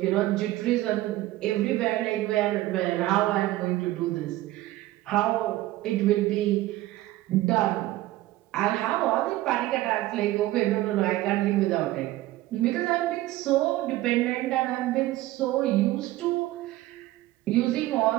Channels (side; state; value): left; quieter; 16.6 dB